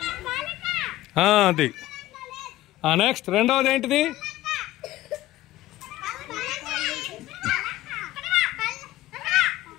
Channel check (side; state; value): right; quieter; 15.8 dB